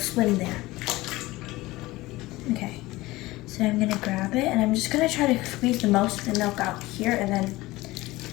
there. Okay, so I'm going to grab it and I'm just going to try to squeeze the most of the milk out here and then,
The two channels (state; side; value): quieter; right; 19.3 dB